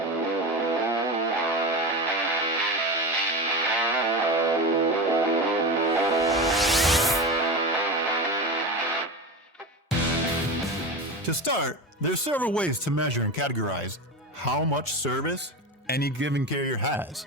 To start, there's several ways to measure and categorize how much service any given carrier has.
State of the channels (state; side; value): normal; both; correlation 0.24